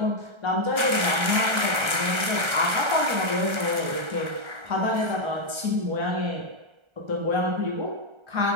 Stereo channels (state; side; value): late; left; 1.3 ms